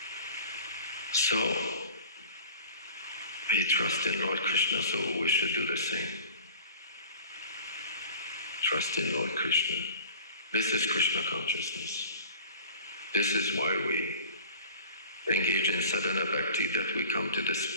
So, he trusts in Lord Krishna, so we should do the same. Trust in Lord Krishna. This is Krishna consciousness. This is why we engage in sadhana bhakti, that we come to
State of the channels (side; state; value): both; inverted; correlation -0.42